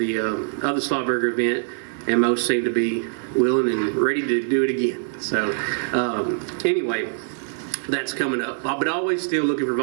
Slowbury event, and most seem to be willing and ready to do it again. So anyway, that's coming up, but always still looking for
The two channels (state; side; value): silent; left; 60 dB below the other